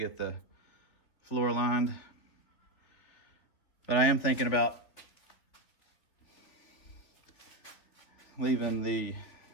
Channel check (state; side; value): late; right; 3.8 ms